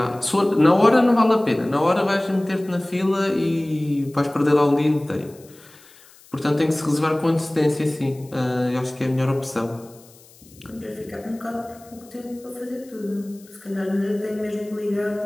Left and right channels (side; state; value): left; noise; hiss, 25 dB below the sound